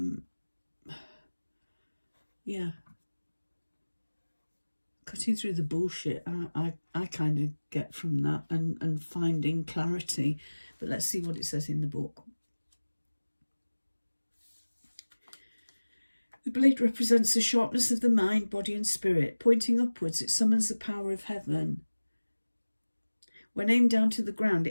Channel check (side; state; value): both; inverted; correlation -1.00